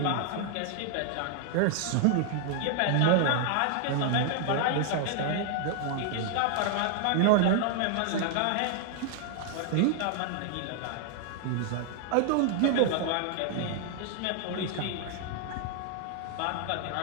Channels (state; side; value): different; both; correlation 0.00